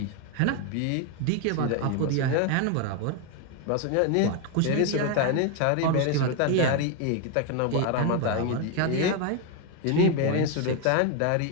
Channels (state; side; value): different; both; correlation 0.01